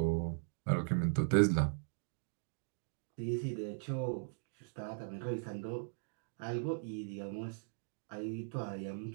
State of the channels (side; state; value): left; silent; digital silence